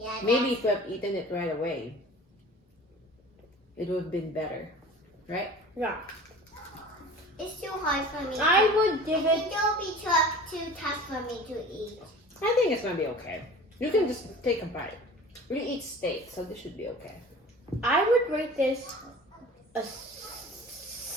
Maybe if we have eaten it right away, it would have been better. Right? Yeah. It's too hard for me. I would I give think it. it will be too tough for me to eat. I think it's gonna be okay. You can just take a bite. We eat steak, so this should be okay. I would rate this a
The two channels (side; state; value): both; normal; correlation 0.42